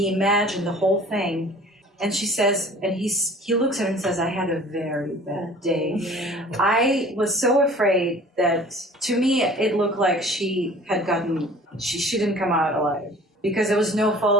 imagined the whole thing. And she says, and he looks at her and says, I had a very bad day. Yeah. I was so afraid that, to me, it looked like she didn't come out alive. Because there was no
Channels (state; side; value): normal; both; correlation 0.47